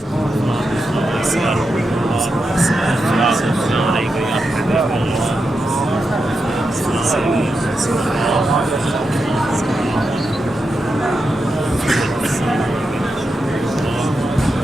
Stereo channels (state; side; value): normal; both; correlation 0.87